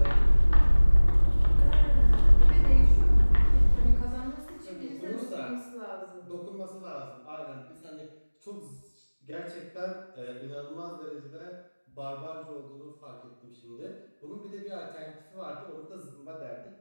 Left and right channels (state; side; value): inverted; both; correlation -1.00